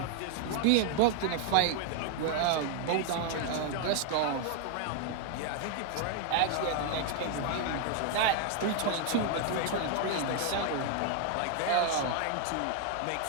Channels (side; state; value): both; different; correlation 0.00